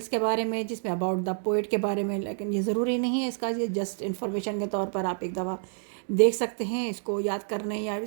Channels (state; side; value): silent; left; 59 dB below the other